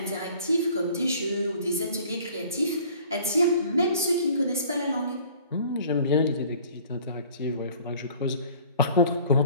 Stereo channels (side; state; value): both; inverted; correlation -0.51